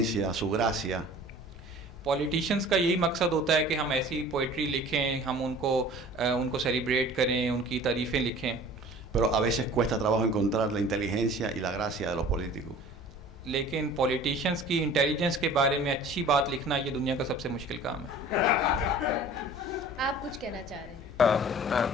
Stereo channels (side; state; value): both; normal; correlation 0.45